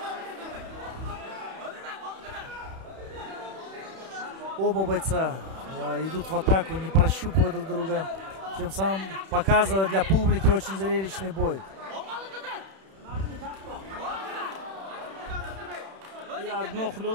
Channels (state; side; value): late; left; 31 ms